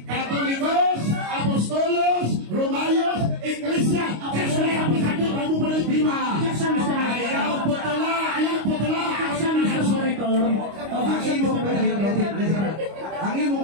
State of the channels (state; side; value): late; left; 25 ms